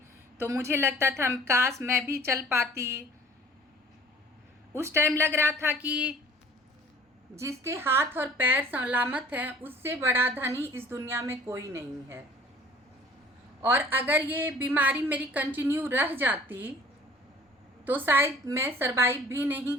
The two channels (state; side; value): normal; both; correlation 0.49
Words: तो मुझे लगता था काश मैं भी चल पाती। उस टाइम लग रहा था कि जिसके हाथ और पैर सलामत हैं उससे बड़ा धनी इस दुनिया में कोई नहीं है। और अगर ये बीमारी मेरी कंटिन्यू रह जाती तो शायद मैं सरवाइव भी नहीं